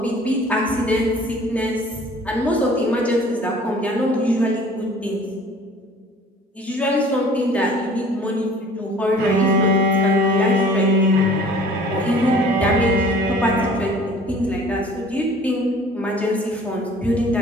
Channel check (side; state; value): both; normal; correlation 0.50